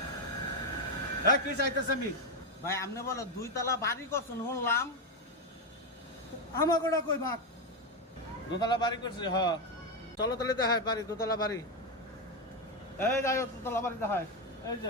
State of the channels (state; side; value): normal; both; correlation 0.08